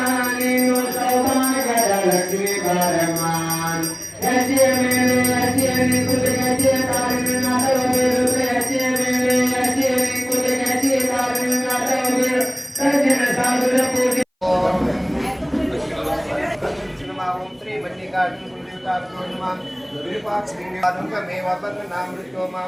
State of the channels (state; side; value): identical; both; correlation 1.00